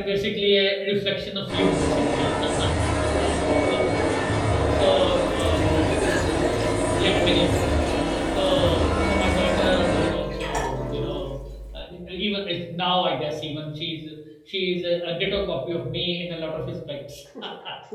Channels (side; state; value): both; identical; correlation 1.00